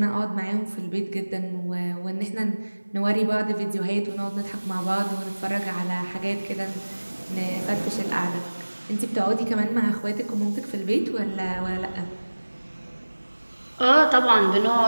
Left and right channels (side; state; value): both; inverted; correlation -1.00